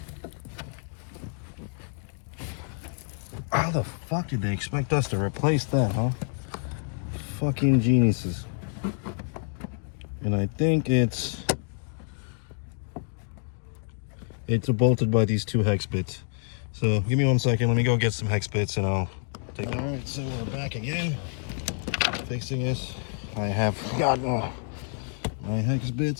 How the fuck did they expect us to replace that, huh? Fucking geniuses. And I think it's bolted by these 2 hex bits. So give me 1 second. Let me go get some hex bits and I'll take. All right, so we're back again, fixing this. I have gotten my hex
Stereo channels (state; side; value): silent; right; 57 dB below the other